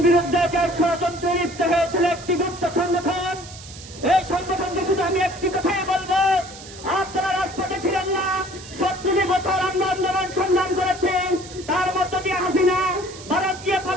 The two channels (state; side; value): noise; right; hiss, 16 dB below the sound